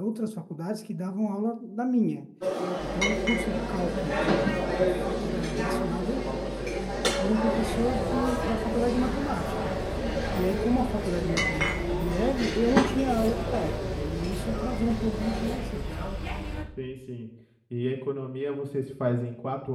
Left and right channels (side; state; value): both; identical; correlation 1.00